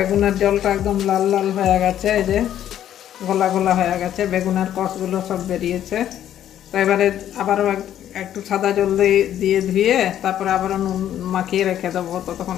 জলটা একদম লাল লাল হয়ে গেছে, এই যে গোলা গোলা হয়ে গেছে, বেগুনের কষগুলো সব বেরিয়েছে। তো এবারে আবারও একটু সাদা জল দিয়ে ধুয়ে তারপরে আবারও নুন মাখিয়ে রেখে দেবো। তো তখন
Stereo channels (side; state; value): right; quieter; 11.1 dB